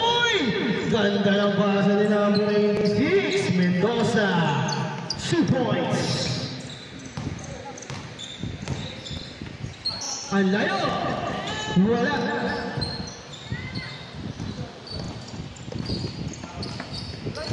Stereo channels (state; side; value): identical; both; correlation 1.00